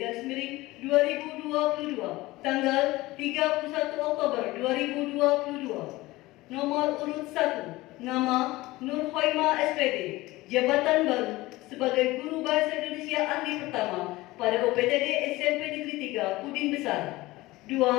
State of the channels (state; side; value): quieter; right; 19.4 dB